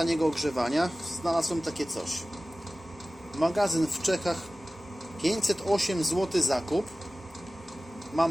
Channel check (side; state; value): both; normal; correlation 0.97